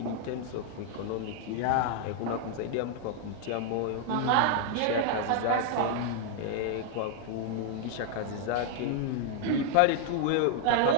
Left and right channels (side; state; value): both; different; correlation 0.00